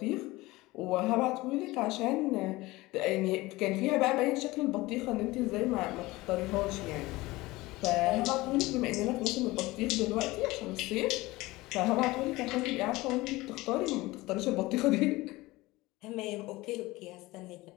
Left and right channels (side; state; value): right; quieter; 20.1 dB